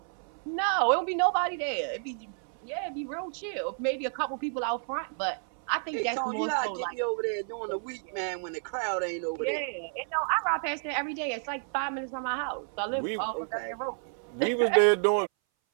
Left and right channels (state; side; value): silent; left; 58 dB below the other